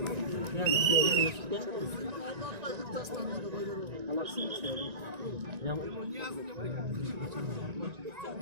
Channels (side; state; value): left; late; 1.9 ms